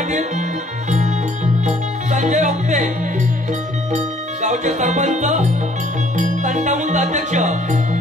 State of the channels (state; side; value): normal; both; correlation 0.60